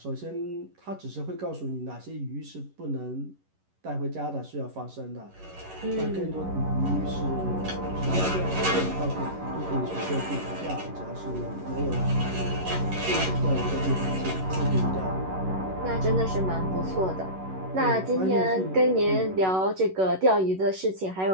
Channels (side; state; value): left; late; 11 ms